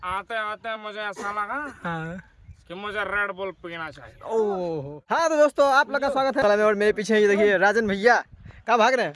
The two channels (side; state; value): both; identical; correlation 1.00